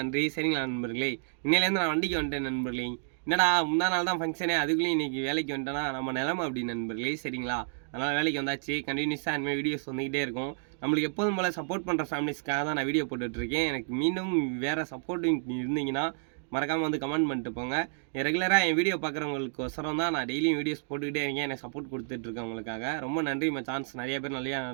சரிங்களா நண்பர்களே, இன்னையிலேருந்து நான் வண்டிக்கு வந்துட்டேன் நண்பர்களே. என்னடா முந்தா நாள் தான் ஃபங்க்ஷனே, அதுக்குள்ளேயும் இன்றைக்கி வேலைக்கு வந்துட்டேன்னா நம்ம நிலமை அப்படி நண்பர்களே. சரிங்களா, அதனால் வேலைக்கு வந்தாச்சு. கண்டினியூஸாக இனிமேல் வீடியோஸ் வந்துக்கிட்டே இருக்கும். நம்மளுக்கு எப்போதும் போல் சப்போர்ட் பண்ணுற ஃபேமிலிஸ்க்காக தான் நான் வீடியோ போட்டுட்ருக்கேன். எனக்கு மீண்டும் வேறு சப்போர்ட்டிங் இருந்தீங்கன்னா மறக்காமல் வந்து கமெண்ட் பண்ணிட்டு போங்க. ரெகுலராக என் வீடியோ பார்க்குறவங்களுக்கு ஒசரம் தான் நான் டெய்லியும் வீடியோஸ் போட்டுக்கிட்டே இருக்கேன். எனக்கு சப்போர்ட் கொடுத்துட்ருக்கேன் உங்களுக்காக. ரொம்ப நன்றி மச்சான்ஸ். நிறைய பேர்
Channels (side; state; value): left; silent; digital silence